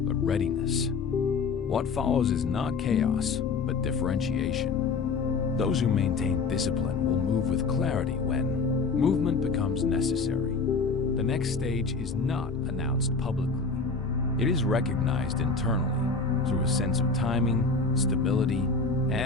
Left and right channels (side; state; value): right; quieter; 4.4 dB